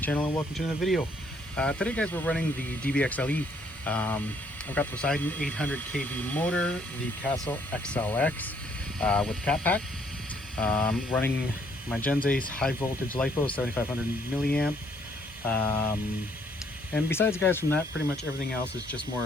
and welcome to another video. Today guys, we're running the DBXLE. I've got the Poseidon 800 kV motor, the Castle XLX with cat pack. Running my Gen Ace high voltage LiFo 7500 milliamp. And besides guys, from that, pretty much everything else is just more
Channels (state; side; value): normal; both; correlation 0.67